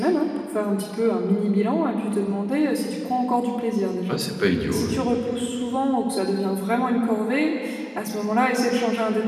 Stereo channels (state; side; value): identical; both; correlation 1.00